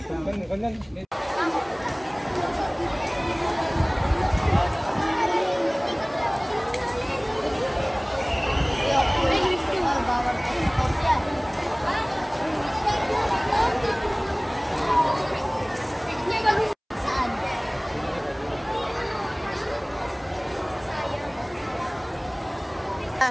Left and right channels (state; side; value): identical; both; correlation 1.00